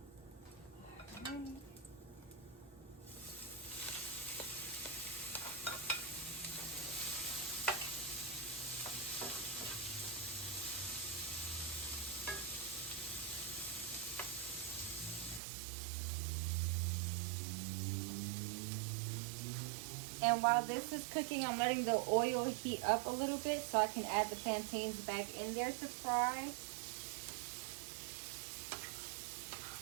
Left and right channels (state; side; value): drops out; left; at 15.4 s